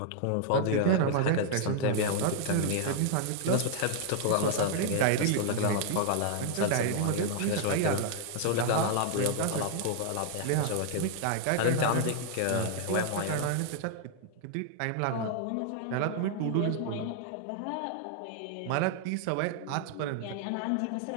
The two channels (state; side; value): different; both; correlation 0.00